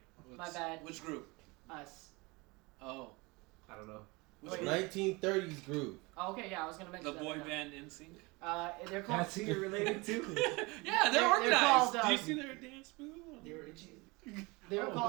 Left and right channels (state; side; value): quieter; left; 25.3 dB